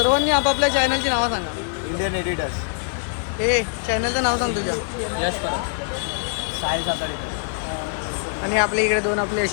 आपापल्या चॅनलची नावं सांगा. Indian editors. हे चॅनलचं नाव सांग तुझ्या. यश परब, साई साताडे. आणि आपल्या इकडे 2 आपले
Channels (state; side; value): silent; right; digital silence